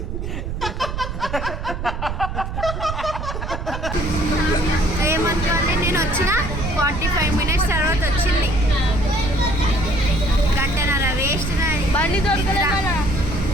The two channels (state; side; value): noise; right; rumble, 5 dB below the sound